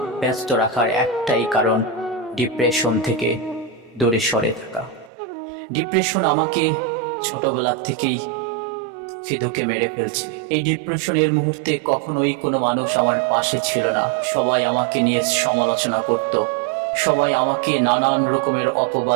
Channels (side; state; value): left; drops out; at 5.1 s